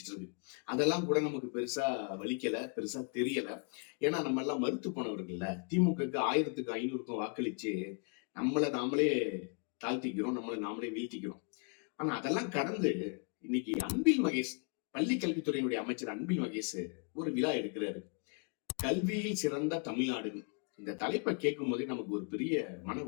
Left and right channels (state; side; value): quieter; right; 37.6 dB